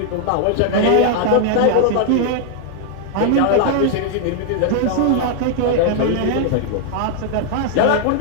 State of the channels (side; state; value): both; different; correlation 0.00